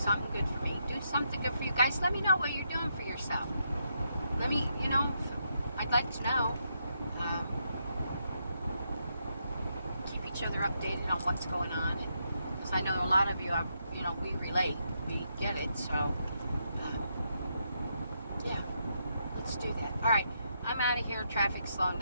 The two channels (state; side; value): inverted; both; correlation -0.80